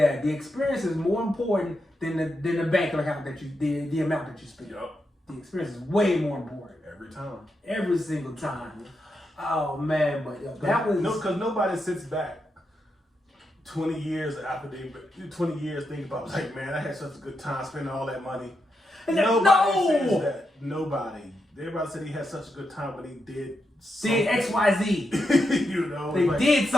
the experience is more important than the bank account that the amount that you spend. Yep. The experience is way more important. Every time. Every single time. Oh man, but that was because nobody sits back 20 years after 20 years thinking about like, man, I had such a good time spending all that money. Nobody says that. Nobody. Everybody said he had such a good time when he did something. Did XYZ. You know, they did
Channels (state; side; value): normal; both; correlation 0.84